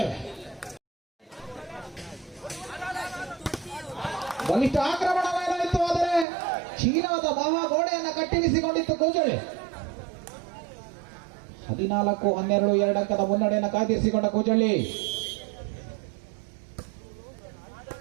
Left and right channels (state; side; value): drops out; left; at 6.2 s